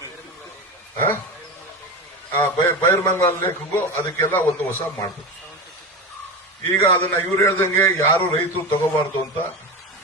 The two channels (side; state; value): both; normal; correlation 0.23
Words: ಬೈರ್ಮಂಗಲ ಲೇಖಗೂ ಅದಕ್ಕೆಲ್ಲ ಒಂದು ಹೊಸ ಮಾಡ್ಬೇಕು. ಈಗ ಅದನ್ನ ಇವ್ರು ಹೇಳ್ದಂಗೆ ಯಾರು ರೈತರು ತಗೋಬಾರ್ದು ಅಂತ